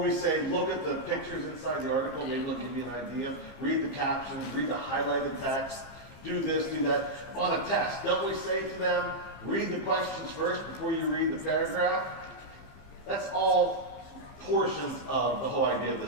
we say, look at the pictures inside the article, maybe it'll give you an idea. Read the captions, read the highlighted text, do this, do that. On a test, don't we say to them, read the questions first before you read the paragraph? That's all portions of the whole idea of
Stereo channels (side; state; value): right; late; 15 ms